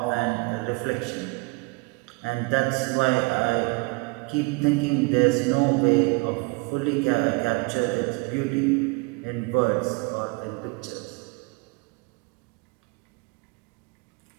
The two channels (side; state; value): left; quieter; 28.6 dB